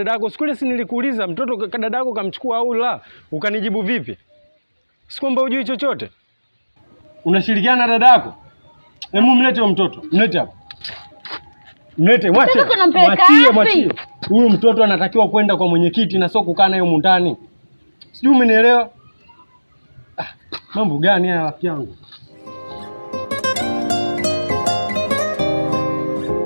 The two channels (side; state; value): both; inverted; correlation -1.00